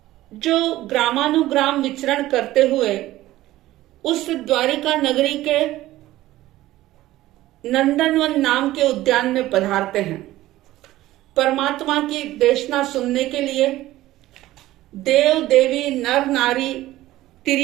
जो ग्रामानुग्राम विचरण करते हुए उस द्वारिका नगरी के नंदनवन नाम के उद्यान में पधारते हैं परमात्मा की देशना सुनने के लिए। देव देवी नर नारी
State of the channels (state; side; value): quieter; left; 15.9 dB